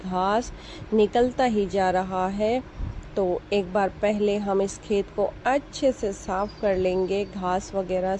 निकलता ही जा रहा है। तो एक बार पहले हम इस खेत को अच्छे से साफ़ कर लेंगे घास वगैरह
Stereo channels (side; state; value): both; identical; correlation 1.00